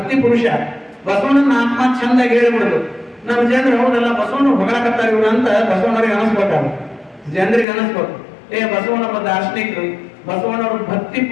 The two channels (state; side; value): drops out; right; at 7.7 s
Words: ಪುರುಷ, ಬಸವಣ್ಣನ ಆತ್ಮ ಚಂದಾಗಿ ಹೇಳ್ಬಿಡುದು. ನಮ್ಮ ಜನರು ಹೌದಲ್ಲ ಬಸವಣ್ಣ ಹೊಗಳಕತ್ತಾರ ಇವ್ರು ಅಂತ ಬಸವಣ್ಣವ್ರಿಗೆ ಅನಿಸ್ಬೇಕಾಗ, ಜನರಿಗೆ ಅನಿಸ್ಬೇಕು. ಬಸವಣ್ಣಪ್ಪ ದಾರ್ಶನಿಕರು, ಬಸವಣ್ಣವ್ರು ಭಕ್ತಿ